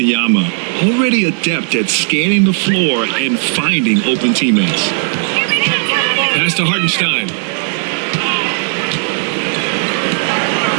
Already adept at scanning the floor and finding open teammates. Pass to Hartenstein.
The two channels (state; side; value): silent; left; 57 dB below the other